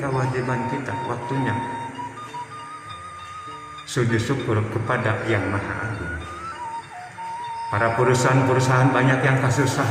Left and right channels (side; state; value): both; identical; correlation 1.00